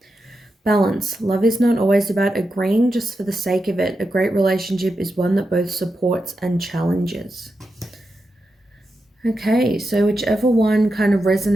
Balance. Love is not always about agreeing just for the sake of it. A great relationship is one that both supports and challenges. Okay, so whichever one kind of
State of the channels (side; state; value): both; normal; correlation 0.88